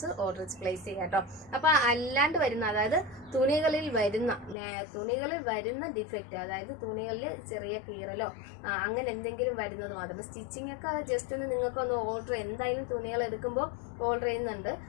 ഓർഡർ പ്ലേസ് ചെയ്യുക കേട്ടോ. അപ്പൊ അല്ലാണ്ട് വരുന്ന, അതായത് തുണികളിൽ വരുന്ന ഡിഫക്റ്റ്, അതായത് തുണികളിൽ ചെറിയ കീറലോ അങ്ങനെ എന്തെങ്കിലും വരുന്നത് മാത്രം. സ്റ്റിച്ചിങ് ഒക്കെ ജസ്റ്റ് ഒന്ന് നിങ്ങൾക്ക് ഒന്ന് ഓർഡർ, എന്തായാലും തുണികൾ എടുക്കുമ്പോൾ ഓർഡർ ചെയ്യുന്നുണ്ട്,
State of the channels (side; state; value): right; drops out; at 4.5 s